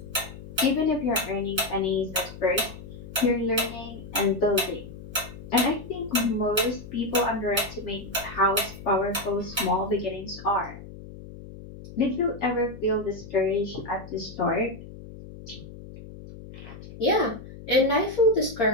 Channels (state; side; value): noise; left; hum, 14 dB below the sound